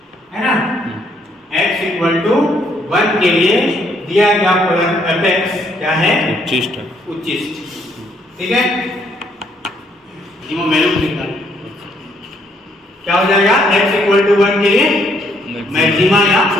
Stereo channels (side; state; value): both; normal; correlation 0.70